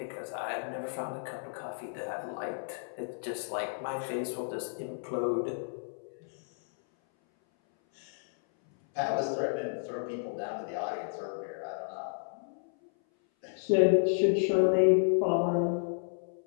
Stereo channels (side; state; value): right; silent; 56 dB below the other